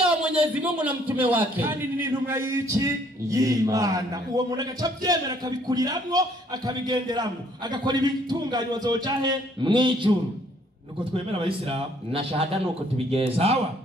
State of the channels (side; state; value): both; normal; correlation 0.63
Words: wa Mwenyezi Mungu na mtume wake. Kandi ni intumwa y'iki y'Imana. Uwo muntu agaca byemera akabikuriramwo akabigenderamwo agakora ibitunganywa zoca he mwijuru. Nuko twemera abayisilamu na shahada nuko tubigenza. Sawa?